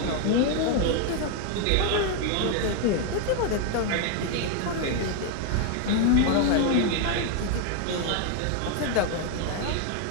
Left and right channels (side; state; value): both; different; correlation 0.01